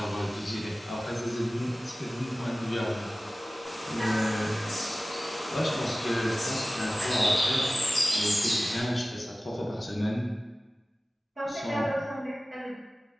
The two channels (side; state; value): both; normal; correlation 0.96